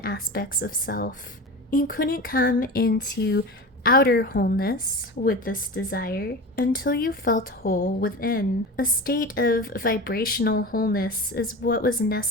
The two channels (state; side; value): normal; both; correlation 0.30